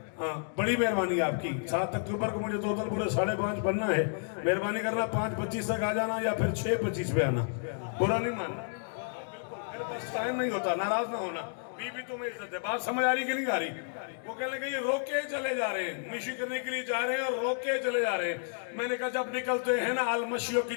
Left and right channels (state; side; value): silent; right; digital silence